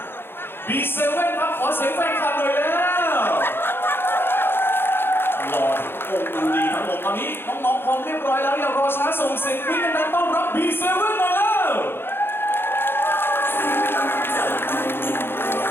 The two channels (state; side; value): late; right; 0.11 ms